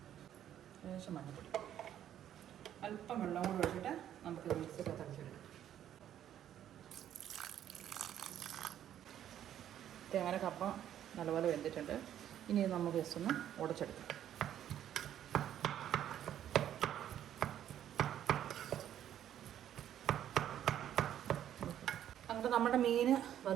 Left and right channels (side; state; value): left; quieter; 10.8 dB